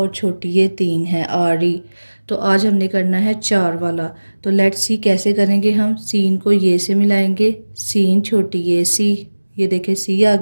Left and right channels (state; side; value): inverted; both; correlation -1.00